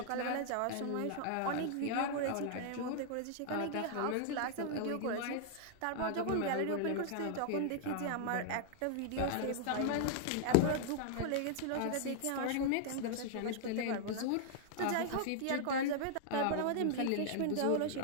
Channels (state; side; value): different; both; correlation -0.01